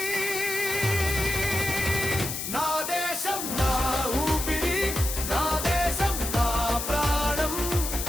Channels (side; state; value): left; noise; hiss, 4 dB below the sound